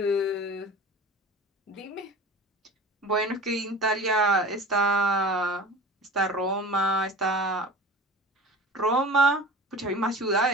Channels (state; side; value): normal; both; correlation 0.36